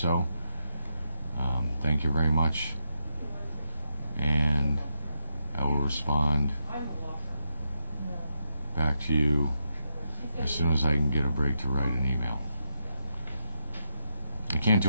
Thank you very much, and I will respond back to you as soon as I can get a break to write an email. I can't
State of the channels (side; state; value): both; inverted; correlation -0.83